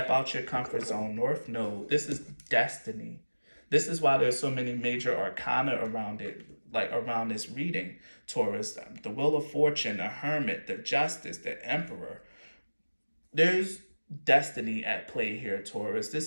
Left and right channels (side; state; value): both; inverted; correlation -1.00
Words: out your comfort zone. North Node. This is destiny. This is why there's so many major arcana around it, like around this reading, Taurus. The Wheel of Fortune, the Hermit, the Justice, the Emperor. There's destiny at play here, Taurus.